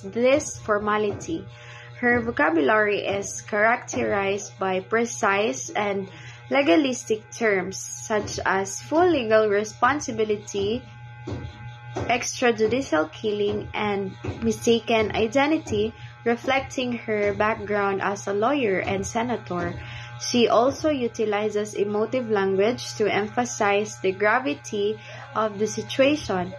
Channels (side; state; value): both; identical; correlation 1.00